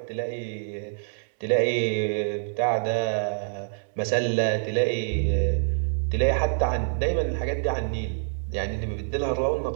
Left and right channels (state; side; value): silent; left; 61 dB below the other